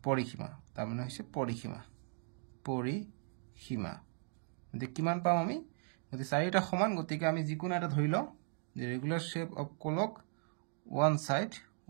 পৰিসীমা তাৰ মানে হৈছে পৰিসীমা গতিকে কিমান পাম আমি গতি চাৰিটা সমান গতিকে আমি যিকোনো এটা ধৰি লওঁ যে regular shape of clock one side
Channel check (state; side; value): silent; left; 53 dB below the other